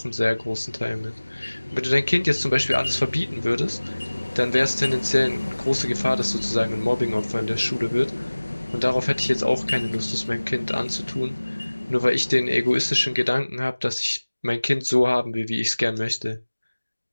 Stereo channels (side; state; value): both; inverted; correlation -1.00